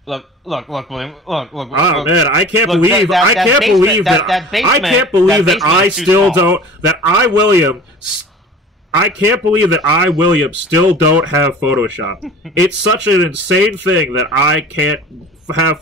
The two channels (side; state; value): both; normal; correlation 0.41